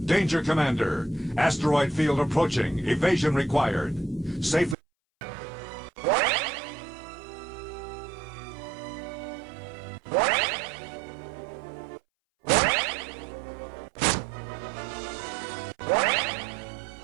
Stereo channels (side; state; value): left; drops out; at 4.8 s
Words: Danger, Commander. Asteroid field approaching. Evasion required. Safely.